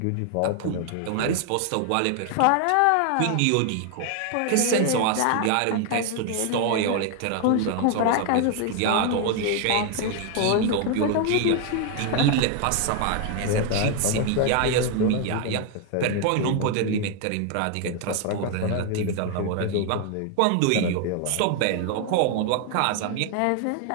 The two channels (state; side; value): different; both; correlation 0.00